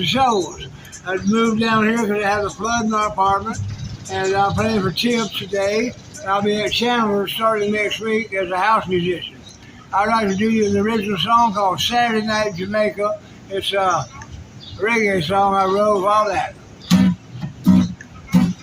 shows. I moved down here because I had a flood in my apartment, and I'm playing for Tips today. I'll be at Chandler starting next week as a house musician. I'd like to do you an original song called Saturday Night Jamaica. It's a reggae song I wrote all that.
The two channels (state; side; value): identical; both; correlation 1.00